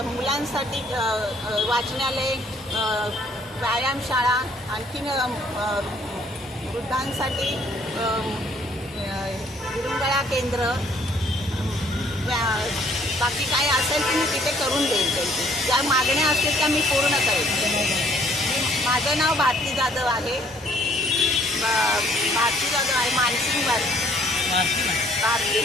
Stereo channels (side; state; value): both; normal; correlation 0.62